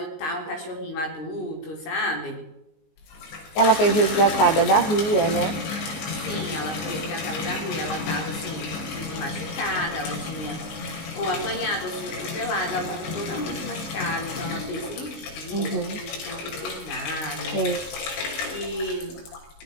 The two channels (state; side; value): late; right; 19 ms